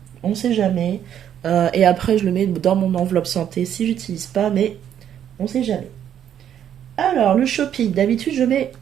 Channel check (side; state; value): left; quieter; 9.8 dB